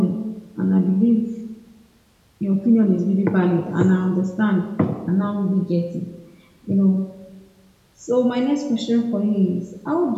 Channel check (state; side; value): identical; both; correlation 1.00